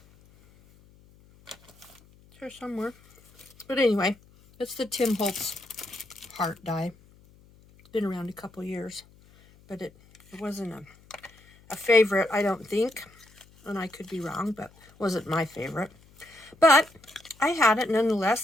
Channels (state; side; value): noise; left; hum, 27 dB below the sound